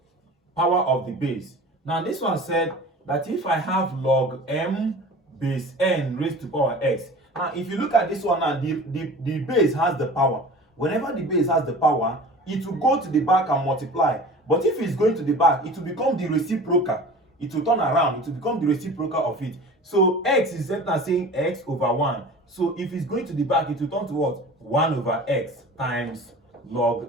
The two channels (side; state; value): both; normal; correlation 0.40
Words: Power of the base. Now this one said that if I have log m base n raised to power x. Now if you look at this one now, the base has the power. Whenever the base has the power, it will go to the back and multiply. But if it's going to the back, it will become the reciprocal. It will turn around, it will become the reciprocal of it. So x is saying x over 1. So if it's going to the back, it will turn to what? 1 over x times